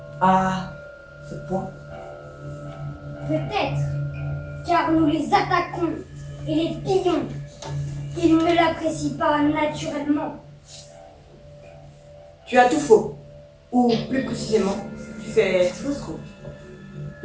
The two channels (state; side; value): identical; both; correlation 1.00